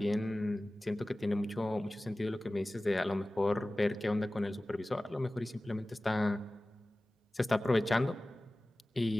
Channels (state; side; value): normal; both; correlation 0.97